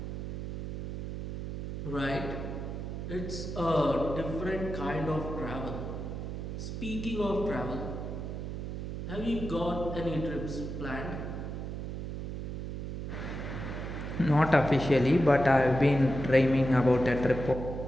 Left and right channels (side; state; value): right; noise; hum, 5 dB below the sound